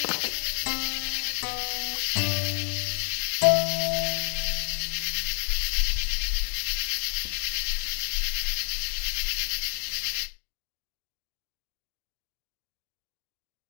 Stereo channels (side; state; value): right; silent; digital silence